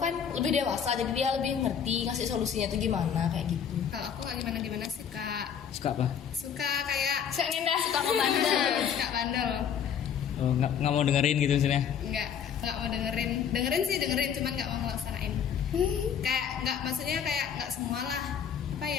lebih dewasa, jadi dia lebih ngerti ngasih solusinya tuh gimana kayak gitu. Kalau aku nggak gimana sih kak. Suka apa? Suka kayak Saya ngindah. suka ngebandel. Suka bandel. Oh, nggak mau dengerin gitu maksudnya? Nggak mau dengerin sih cuman nggak mau ngelaksanain. Kayak nggak, maksudnya kayak nggak semua lah, apa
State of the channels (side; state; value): right; quieter; 8.0 dB